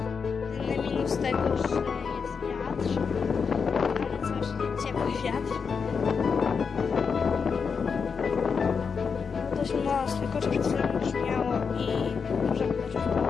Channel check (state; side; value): quieter; right; 5.8 dB